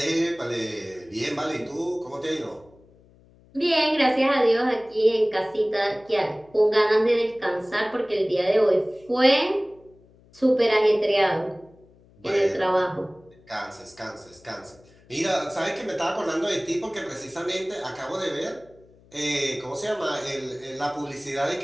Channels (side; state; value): left; noise; hum, 28 dB below the sound